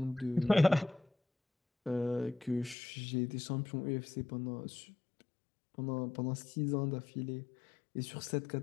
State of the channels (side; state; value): right; drops out; at 2.8 s